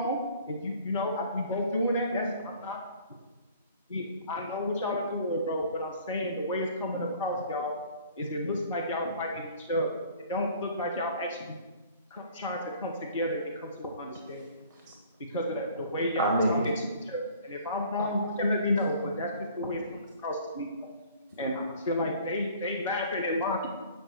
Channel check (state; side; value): inverted; both; correlation -0.51